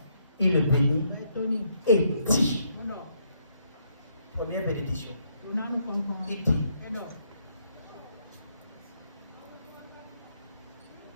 il le bénit et dit, première bénédiction, il dit,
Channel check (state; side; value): inverted; both; correlation -0.73